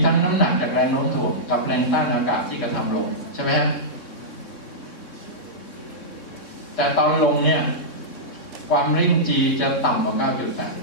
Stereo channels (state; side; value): late; right; 3.6 ms